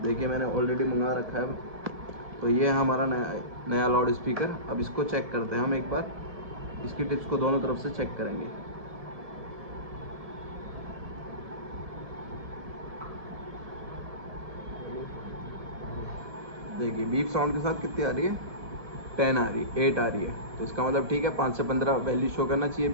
देखिए मैंने ऑलरेडी मंगा रखा है। तो ये है हमारा नया लाउड स्पीकर। अब इसको चेक करते हैं हम एक बार, इसकी टिप्स को दोनों तरफ से चेक करेंगे। देखिए बीप साउंड के साथ कितनी आ रही है, 10 आ रही है, 8 आ रही है। तो इसका मतलब ठीक है, 5 से 15 वैल्यू शो करना चाहिए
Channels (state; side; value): late; left; 1.7 ms